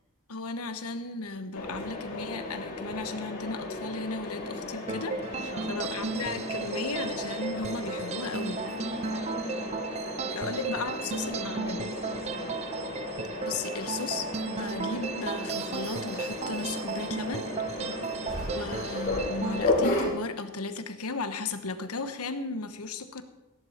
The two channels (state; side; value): normal; both; correlation 0.13